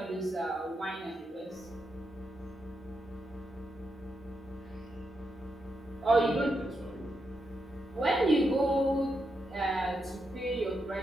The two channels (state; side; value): normal; both; correlation 0.84